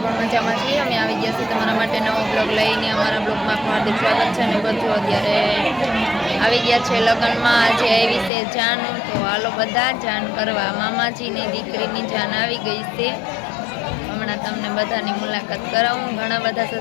પણ મજામાં છીએ. અમે આવી ગયા છીએ તમારા માટે નવો બ્લોગ લઈને. અમારા બ્લોગમાં હાર્દિક સ્વાગત છે. અને બધું અત્યારે આવી ગયા છે લગ્નમાં. આજે આવી છે જાન, તો હાલો બધા જાન કરવા. મામાજીની દીકરીની જાન આવી ગઈ છે. હમણાં તમને બધાની મુલાકાત કરાવું. ઘણા બધા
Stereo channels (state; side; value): drops out; right; at 8.3 s